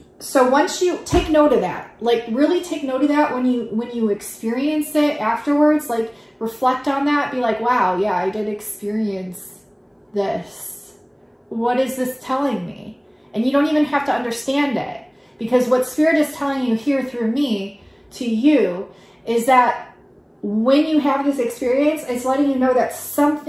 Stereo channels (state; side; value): identical; both; correlation 1.00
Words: so once you take note of that, like really take note of that when you experience it afterwards, like reflect on that, be like, wow, yeah, I did experience this. What is this telling me? And you don't even have to understand it. Because what Spirit is telling you here through me to you is that when you have this experience, it's letting you know that